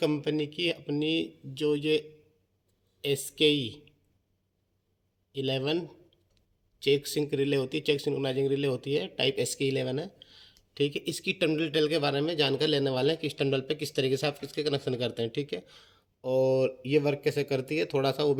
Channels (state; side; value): identical; both; correlation 1.00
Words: की अपनी जो ये SKE 11 चेक सिंक रिले होती है, चेक सिंक्रोनाइजिंग रिले होती है, टाइप SKE 11 है। ठीक है, इसकी टर्मिनल डिटेल के बारे में जानकारी लेने वाले हैं कि इस टर्मिनल पे किस तरीके से आप इसके कनेक्शन करते हैं। ठीक है, और ये वर्क कैसे करती है थोड़ा सा वो